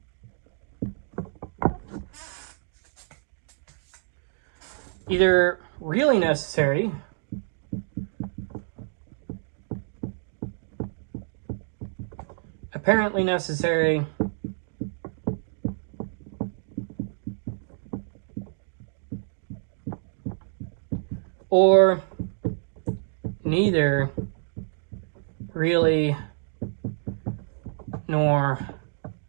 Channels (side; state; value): left; silent; digital silence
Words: either really necessary apparently necessary or neither really nor